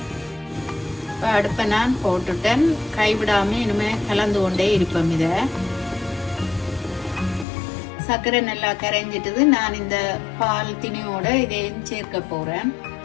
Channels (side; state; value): right; drops out; at 7.5 s